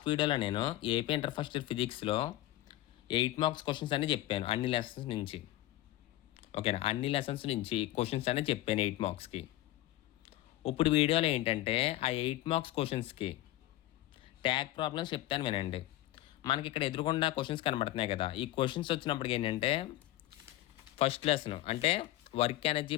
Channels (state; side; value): quieter; right; 15.6 dB